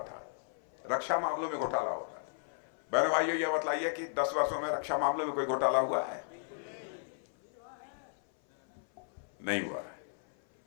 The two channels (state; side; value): silent; right; 54 dB below the other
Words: था। बहनों भाइयों, यह बतलाइए कि 10 वर्षों में रक्षा मामले में कोई घोटाला हुआ है? नहीं हुआ है।